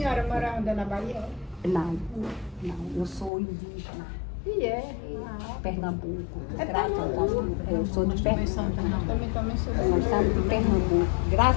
mora onde, na Bahia? Não, eu sou indígena, E é. Pernambuco, É graças a Pernambuco. Deus. Eu sou de Pernambuco. Também sou Nós estamos de Pernambuco,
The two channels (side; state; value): right; drops out; at 3.3 s